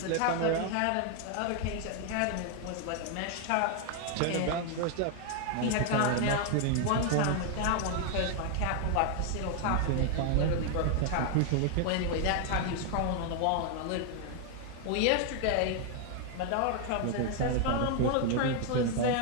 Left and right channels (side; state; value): both; different; correlation 0.01